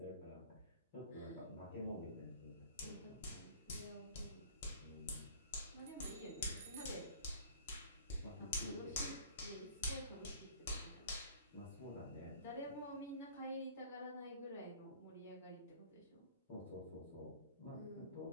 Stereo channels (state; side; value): inverted; both; correlation -0.47